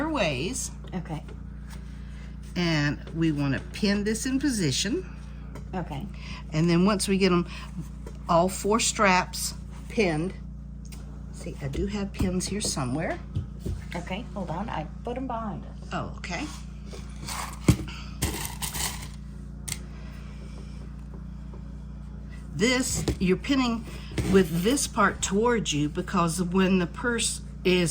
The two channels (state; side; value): identical; both; correlation 1.00